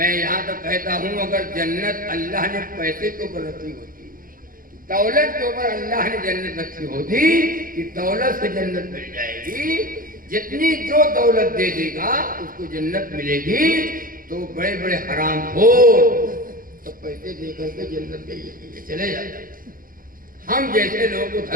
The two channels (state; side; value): late; left; 0.41 ms